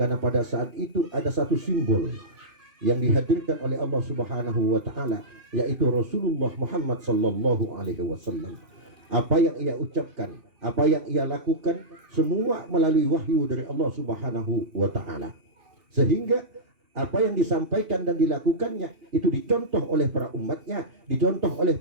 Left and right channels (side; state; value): left; late; 2.4 ms